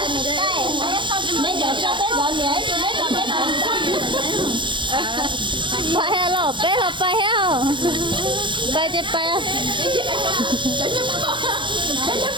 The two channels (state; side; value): late; left; 0.23 ms